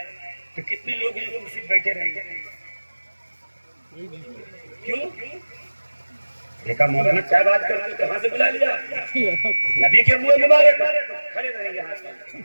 تو کتنے لوگ یہاں کرسی پہ بیٹھے رہیں گے؟ کیوں؟ دیکھا مولانا کیا بات کرتے ہیں، کہاں سے بلا لیا؟ نبی کے منہ مبارک کھڑے رہیں گے، ہاتھ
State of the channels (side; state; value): both; inverted; correlation -1.00